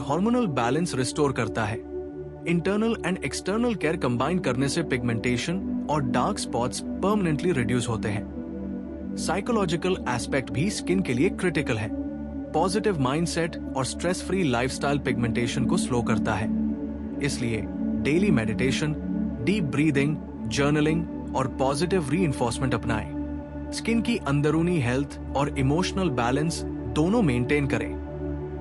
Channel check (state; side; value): identical; both; correlation 1.00